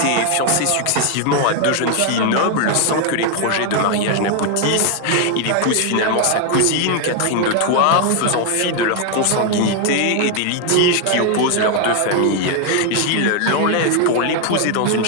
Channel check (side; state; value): both; different; correlation 0.00